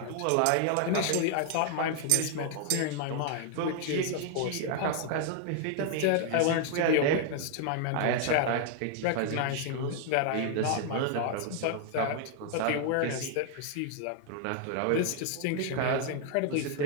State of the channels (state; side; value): different; both; correlation 0.00